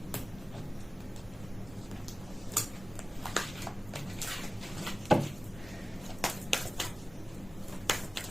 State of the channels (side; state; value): both; normal; correlation 0.97